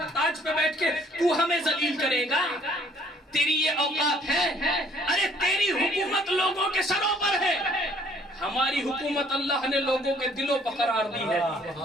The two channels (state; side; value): normal; both; correlation 0.60